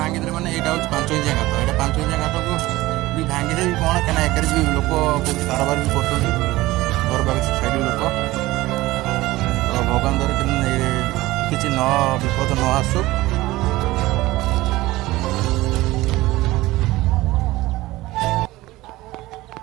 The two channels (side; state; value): left; quieter; 18.4 dB